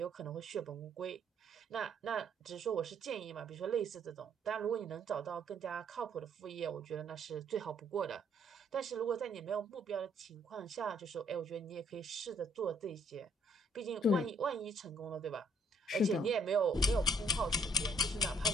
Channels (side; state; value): both; normal; correlation 0.66